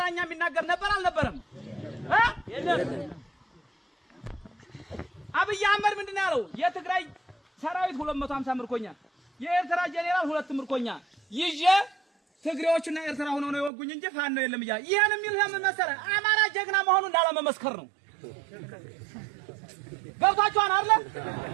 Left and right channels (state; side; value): drops out; left; at 13.7 s